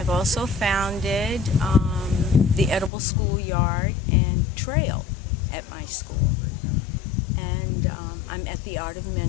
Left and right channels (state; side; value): drops out; right; at 2.9 s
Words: also founded the Edible Schoolyard and Trail at my school. And I'm at the Art of